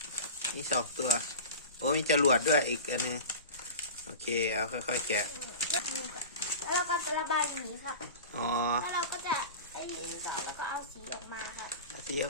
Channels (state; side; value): inverted; both; correlation -0.33